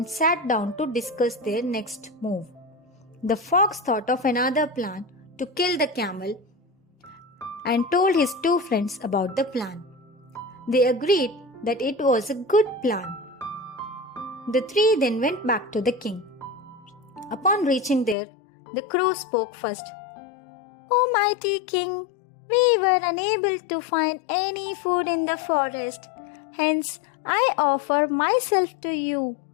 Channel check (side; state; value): right; drops out; at 18.2 s